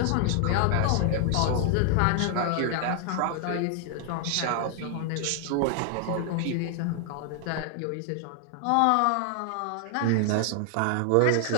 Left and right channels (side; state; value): both; different; correlation 0.00